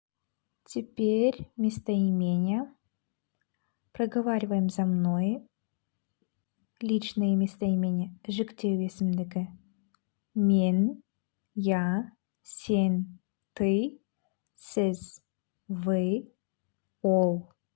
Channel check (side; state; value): right; silent; digital silence